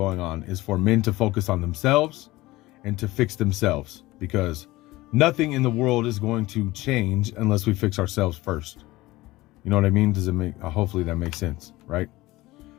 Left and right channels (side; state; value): right; quieter; 19.0 dB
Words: on is for men to focus on themselves and to fix themselves, because nothing in the world is going to change unless we fix ourselves first. You know what I mean? Does it make, hopefully that makes sense, right?